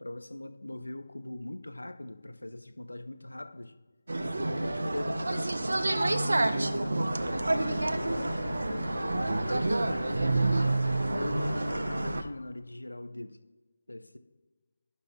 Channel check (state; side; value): inverted; both; correlation -0.97